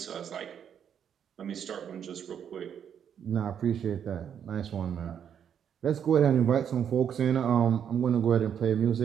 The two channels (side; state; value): left; quieter; 8.5 dB